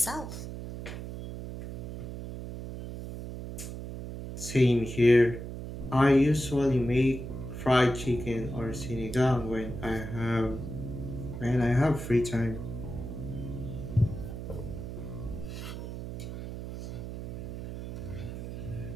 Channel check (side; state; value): right; noise; hum, 8 dB below the sound